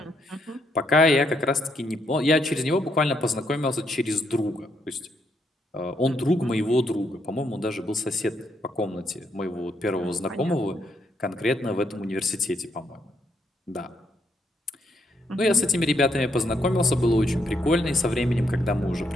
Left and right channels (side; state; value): both; normal; correlation 0.75